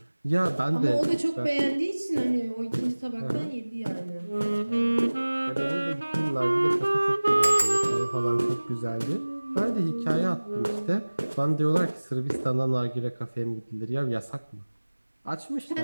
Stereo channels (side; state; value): both; inverted; correlation -1.00